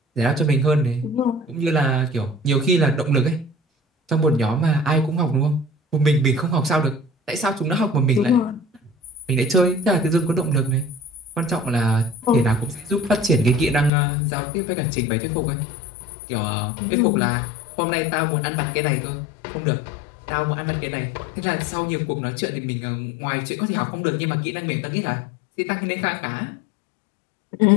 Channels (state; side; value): drops out; right; at 13.9 s